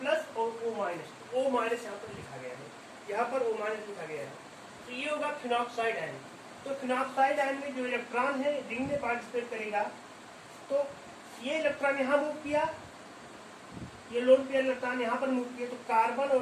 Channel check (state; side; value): identical; both; correlation 1.00